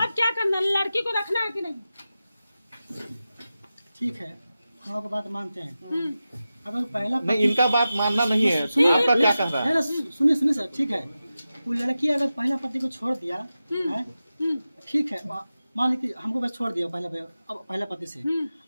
क्या करना है? लड़की को रखना है कि नहीं? ठीक है, हम आपकी बात मानते हैं। अगर पहला नहीं, इनका बात मानना नहीं है। आपका क्या कह रहा है? सुनिए सुनिए सर, ठीक है, वो लड़की अगर पहला पति को छोड़ दिया है, ठीक है, मान ली कि हमको बस छोड़ दिया पहला पति से,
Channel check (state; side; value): inverted; both; correlation -0.93